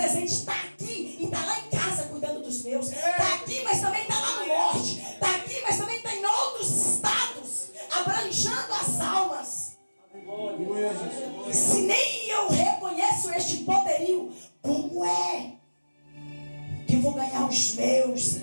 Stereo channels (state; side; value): inverted; both; correlation -1.00